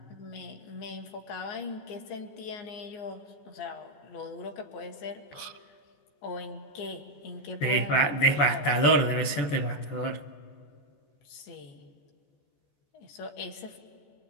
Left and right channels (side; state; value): right; late; 14 ms